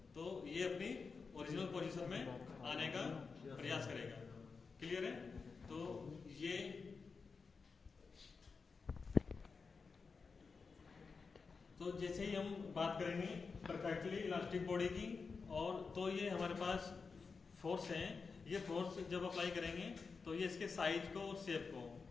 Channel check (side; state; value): right; quieter; 4.9 dB